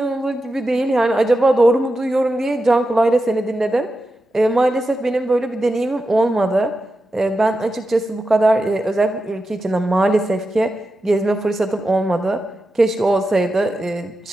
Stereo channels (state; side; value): normal; both; correlation 0.90